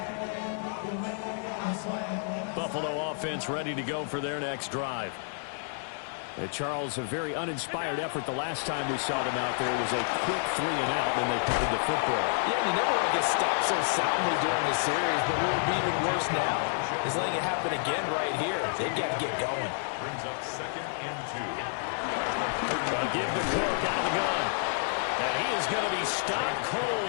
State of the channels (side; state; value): right; silent; 58 dB below the other